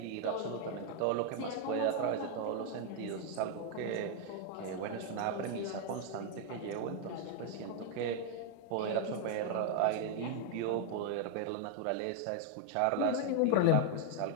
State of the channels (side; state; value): both; different; correlation 0.00